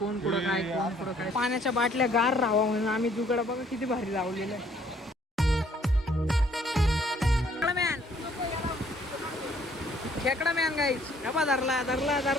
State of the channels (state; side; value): normal; both; correlation 0.62